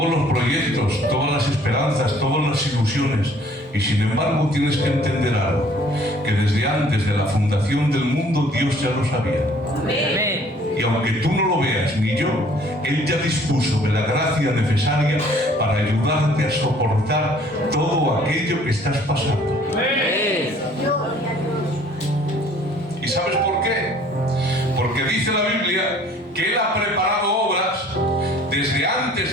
los proyectos, todas las esperanzas, todas las ilusiones, y sin embargo tienes que entender algo, que desde antes de la fundación del mundo Dios ya lo sabía. Amén. Y aunque tú no lo veas ni yo, Él ya dispuso de la gracia necesaria para ayudarte a soportar todo aquello que estás pasando. Amén. ¿Y sabes por qué? Porque dice la Biblia que Él ha preparado obras desde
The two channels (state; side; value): normal; both; correlation 0.56